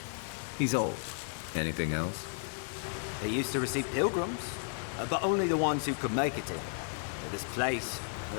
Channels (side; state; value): right; silent; digital silence